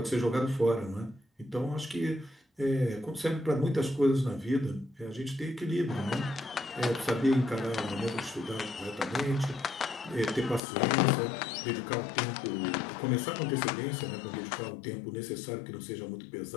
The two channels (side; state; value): right; drops out; at 10.6 s